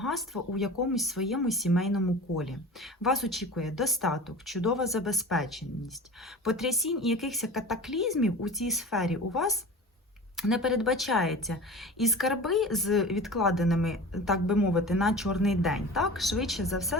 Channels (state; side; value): normal; both; correlation 0.35